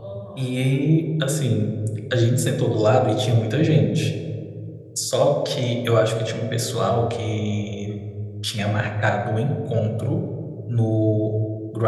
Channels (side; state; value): both; identical; correlation 1.00